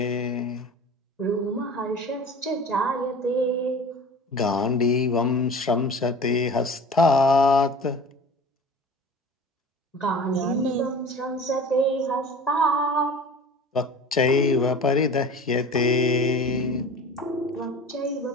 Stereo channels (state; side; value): normal; both; correlation 0.39